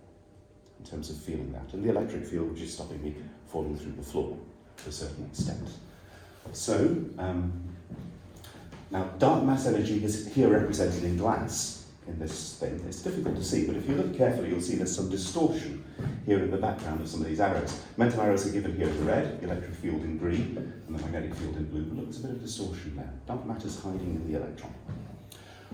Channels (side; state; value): both; identical; correlation 1.00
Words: in terms of feeling that. And the electric field, which is stopping me falling through the floor to a certain extent. So, now dark mass energy is here represented in glass in this thing. It's difficult to see, but if you look carefully, you'll see there's some distortion here in the background of some of these arrows. Momentum arrows are given here in red, the electric field in green, and the magnetic field in blue. But look, there's a bit of distortion there. Dark matter's hiding in the electron.